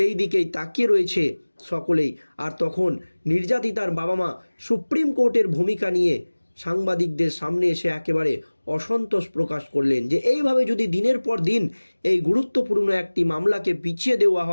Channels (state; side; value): inverted; both; correlation -1.00